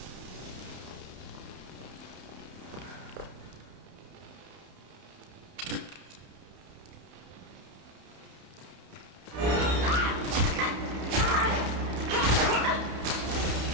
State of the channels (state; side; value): late; left; 31 ms